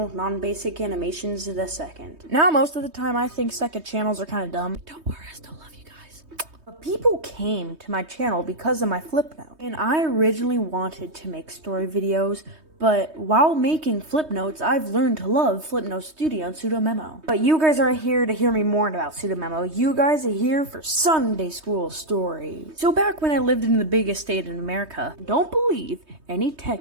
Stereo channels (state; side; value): late; left; 3.2 ms